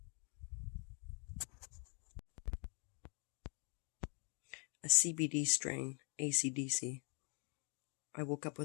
A CBD strain, AC/DC. I woke up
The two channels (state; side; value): quieter; right; 36.7 dB